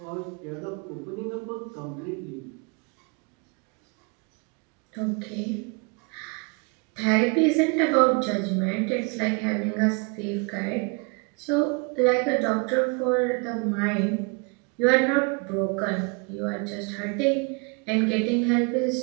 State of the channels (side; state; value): left; quieter; 32.2 dB